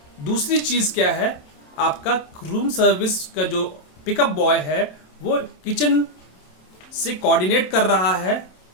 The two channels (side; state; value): right; late; 27 ms